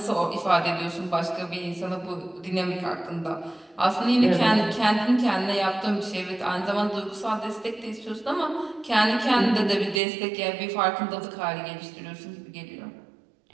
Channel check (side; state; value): left; drops out; at 10.0 s